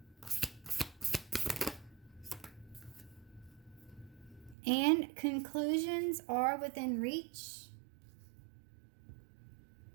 And conclusions are within reach.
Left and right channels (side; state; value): left; drops out; at 4.5 s